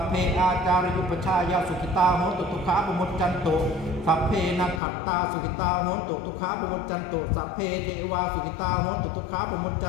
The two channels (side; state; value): right; drops out; at 4.8 s